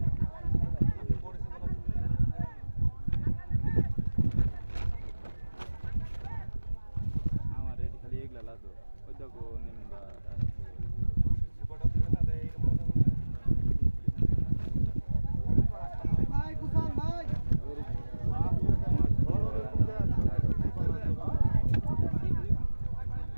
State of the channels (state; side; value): inverted; both; correlation -1.00